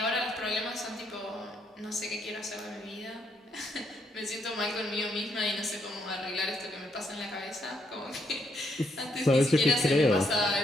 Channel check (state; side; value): normal; both; correlation 0.75